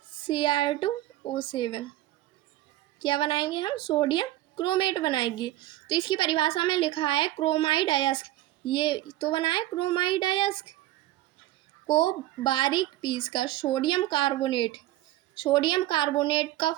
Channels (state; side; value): quieter; left; 15.7 dB